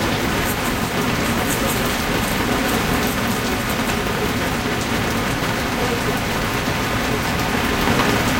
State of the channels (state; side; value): identical; both; correlation 1.00